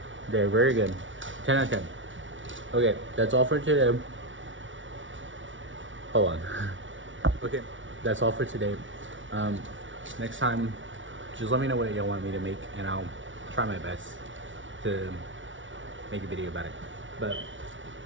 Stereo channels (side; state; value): left; late; 0.56 ms